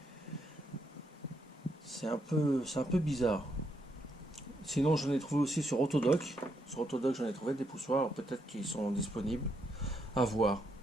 c'est un peu bizarre. Sinon j'en ai trouvé aussi sur Autodoc. Sur Autodoc j'en ai trouvé des poussoirs, peut-être qu'ils sont disponibles. À voir.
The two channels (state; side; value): normal; both; correlation 0.78